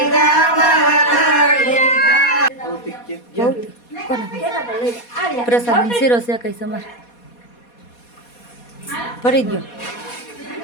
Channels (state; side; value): late; right; 4.2 ms